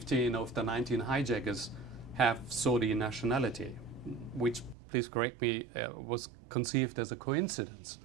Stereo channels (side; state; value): left; drops out; at 4.8 s